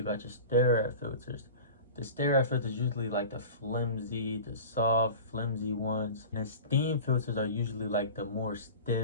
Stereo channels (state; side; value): inverted; both; correlation -0.36